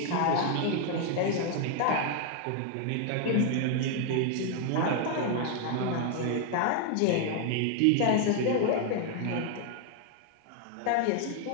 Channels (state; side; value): different; both; correlation 0.00